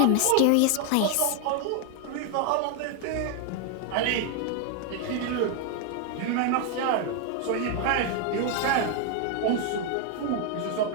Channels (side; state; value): both; different; correlation 0.00